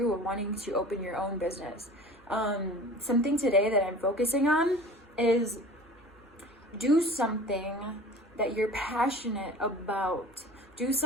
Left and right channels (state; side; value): normal; both; correlation 0.40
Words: are wanting to open your own business. Something today that I'm focusing on is do something that you're passionate about. Do